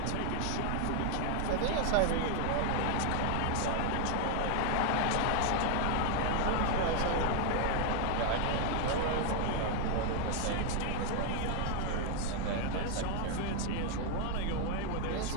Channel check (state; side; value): different; both; correlation 0.00